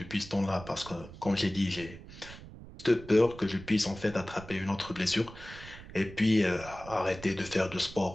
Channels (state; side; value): noise; right; rumble, 15 dB below the sound